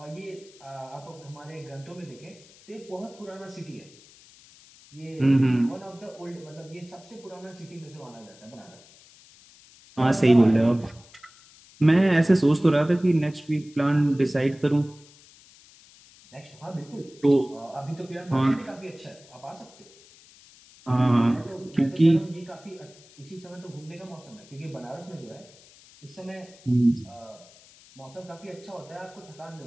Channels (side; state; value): left; noise; hiss, 24 dB below the sound